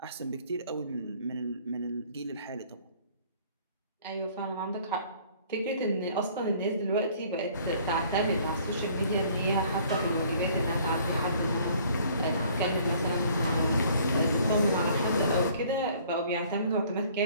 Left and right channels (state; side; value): inverted; both; correlation -0.56